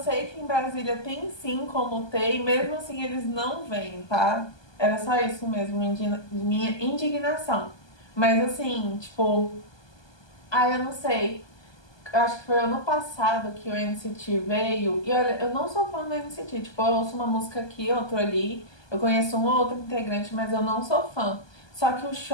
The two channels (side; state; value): right; late; 1.2 ms